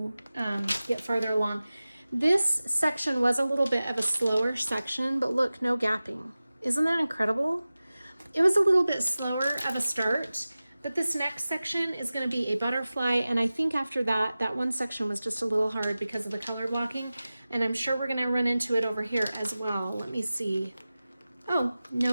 get farther along. This section was a little bit of a slower section, but look, no gapping. Isn't that incredible? It was a little bit slower of a start, but this next section is going to be a butterfly, and I think after that, that one section was just a little hard because of the color blocking, and I'm sure we're going to run into it over here as well. Let me see. Oh,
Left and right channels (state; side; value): inverted; both; correlation -0.96